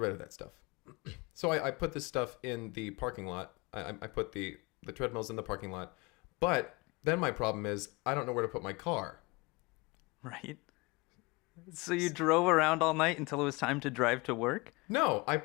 of that stuff. So I put this stuff in the parking lot. I put the treadmills in the parking lot. But then my problem is I don't know where to put my car. Right. So you drove around all night until it was time to drive to work? No, I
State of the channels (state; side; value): quieter; right; 25.9 dB